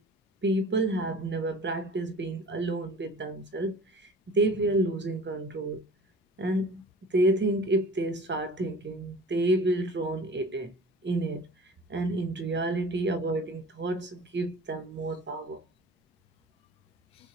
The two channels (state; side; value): normal; both; correlation 0.43